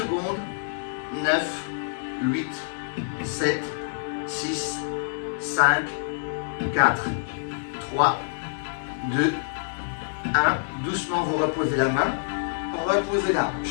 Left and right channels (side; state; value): right; silent; digital silence